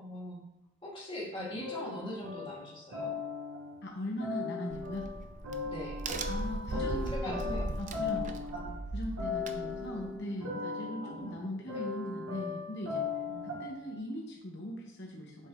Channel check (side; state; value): both; normal; correlation 0.47